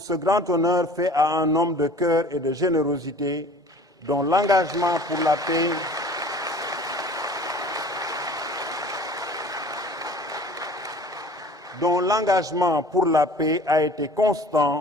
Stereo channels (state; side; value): normal; both; correlation 0.46